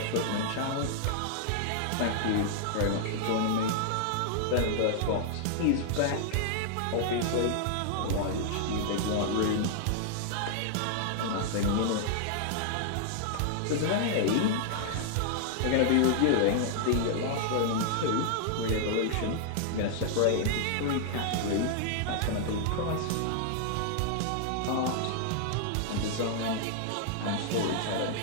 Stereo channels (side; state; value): both; different; correlation -0.01